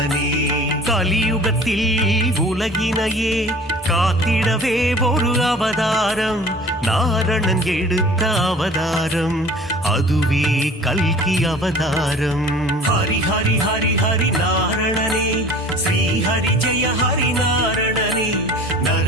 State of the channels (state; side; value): normal; both; correlation 0.45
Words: கலியுகத்தில் உலகினையே காத்திடவே ஒரு அவதாரம், நாரணன் எடுத்த அவதாரம், அதுவே கல்கி அவதாரம். ஹரி ஹரி ஹரி ஹரி நாரணனே, ஸ்ரீ ஹரி ஜெய ஹரி நாரணனே,